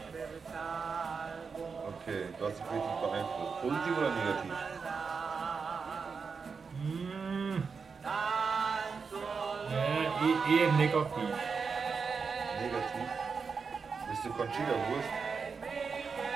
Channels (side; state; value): left; quieter; 5.3 dB